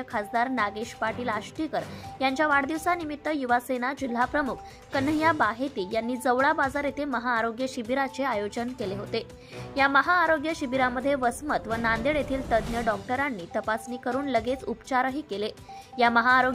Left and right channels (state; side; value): identical; both; correlation 1.00